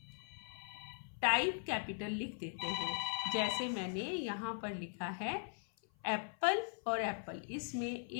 टाइप कैपिटल लिख देते हैं। जैसे मैंने यहाँ पर लिखा है एप्पल और एप्पल, इसमें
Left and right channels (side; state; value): right; silent; 51 dB below the other